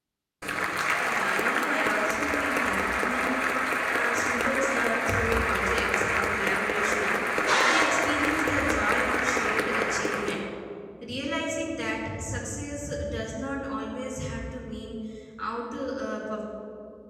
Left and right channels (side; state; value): both; identical; correlation 1.00